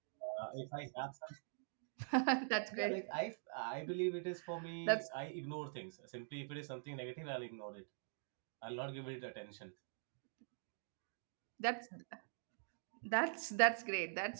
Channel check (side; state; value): left; silent; digital silence